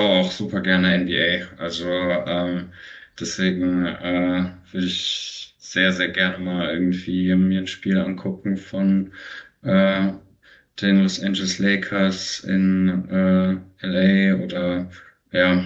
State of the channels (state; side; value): identical; both; correlation 1.00